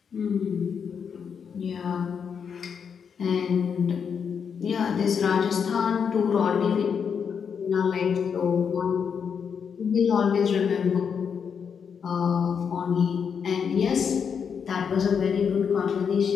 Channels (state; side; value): quieter; right; 6.8 dB